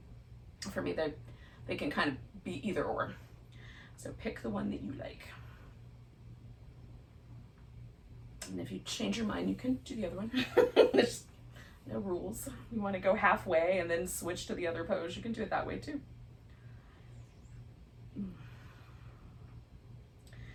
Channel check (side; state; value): both; identical; correlation 1.00